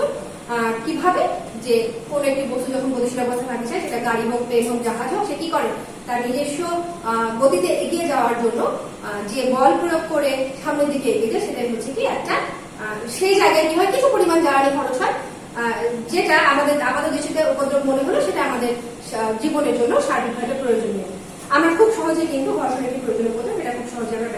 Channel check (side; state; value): both; identical; correlation 1.00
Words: কিভাবে, যে কোন একটি বস্তু যখন গতিশীল অবস্থায় থাকতে চায়, সেটা গাড়ি হোক, প্লেন হোক, জাহাজ হোক, সে কি করে, তার নিজস্ব গতিতে এগিয়ে যাওয়ার জন্য যে বল প্রয়োগ করে সামনের দিকে এগিয়ে যায়, সেটাই হচ্ছে কি একটা, সেই জায়গায় কি হয়, কিছু পরিমাণ জ্বালানি খরচ হয়, যেটা আমাদের দৃষ্টিতে উপদ্রব মনে হলো, সেটা আমাদের জীবনের জন্য সার্বিকভাবে প্রয়োজনীয়। আমরা খুব সহজে কিন্তু ঘর্ষণ একটি প্রয়োজনীয় উপদ্রব, এটা খুব সহজে আমরা